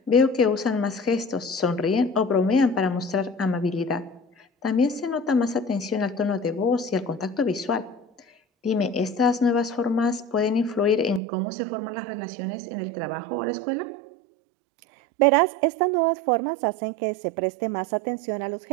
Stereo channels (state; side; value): drops out; left; at 11.2 s